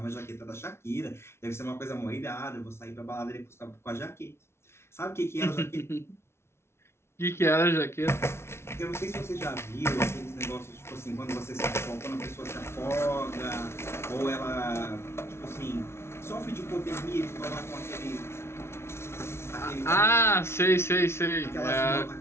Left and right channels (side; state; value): right; late; 0.12 ms